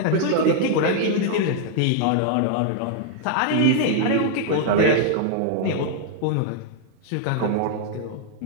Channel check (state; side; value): different; both; correlation 0.00